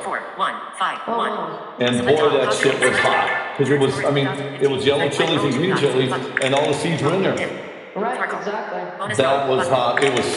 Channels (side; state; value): both; identical; correlation 1.00